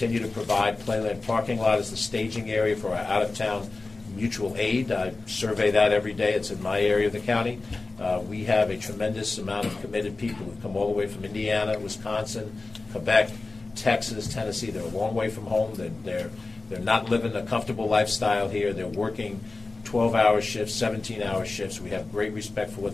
to provide Playland parking lot as the staging area for our out-of-town mutual aid. I survey that every day. It's in my area of the county. We have a tremendous amount of committed people who come all the way from Indiana, Wisconsin, Quebec, Texas, Tennessee. They're a long way from home. They're not living a comfortable lifestyle here. They're working 12-hour shifts, 17-hour shifts. We have great respect for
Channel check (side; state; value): right; quieter; 3.5 dB